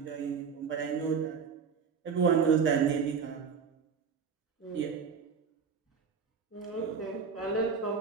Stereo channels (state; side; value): quieter; left; 6.0 dB